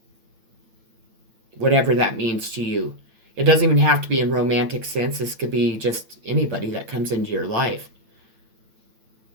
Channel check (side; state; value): left; late; 8.9 ms